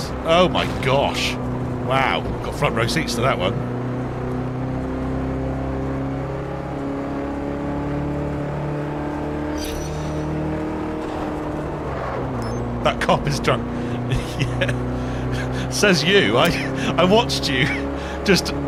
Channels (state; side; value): identical; both; correlation 1.00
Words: Oh my gosh. Wow. Got front row seats to that one. That cop is drunk. Yeah. Says you. I watched you just